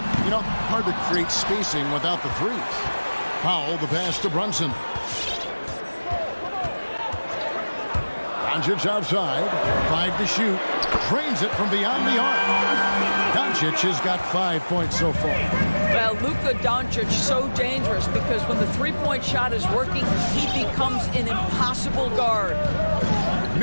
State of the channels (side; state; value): both; inverted; correlation -1.00